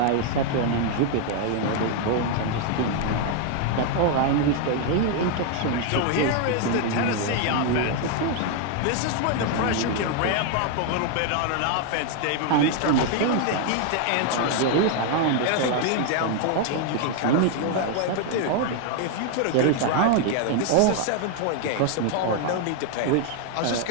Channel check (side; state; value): both; different; correlation 0.00